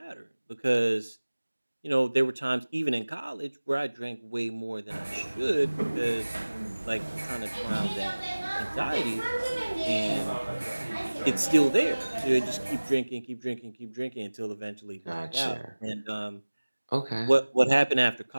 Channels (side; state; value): both; inverted; correlation -1.00